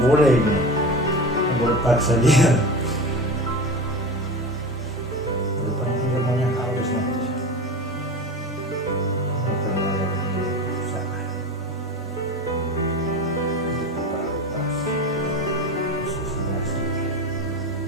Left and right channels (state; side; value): normal; both; correlation 0.28